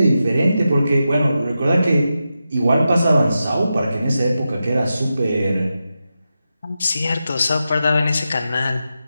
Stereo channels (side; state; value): both; inverted; correlation -0.90